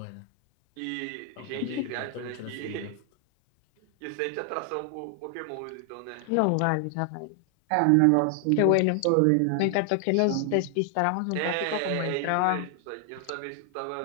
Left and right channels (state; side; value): different; both; correlation 0.00